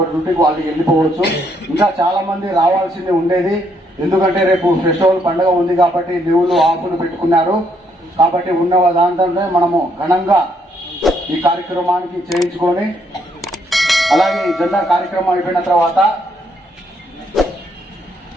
డ్యూటీకి వాళ్ళు వెళ్ళిపోవచ్చు. ఇంకా చాలా మంది రావాల్సింది ఉండేది. ఎందుకంటే రేపు ఫెస్టివల్ పండుగ ఉంది కాబట్టి లీవులు ఆఫ్లు పెట్టుకున్నారు. కాబట్టి ఉన్న దాంట్లోనే మనము ఘనంగా ఈ కార్యక్రమానికి చేయించుకొని, అలాగే ఈ జెండా కార్యక్రమం అయిపోయిన తర్వాత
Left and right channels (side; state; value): both; normal; correlation 0.72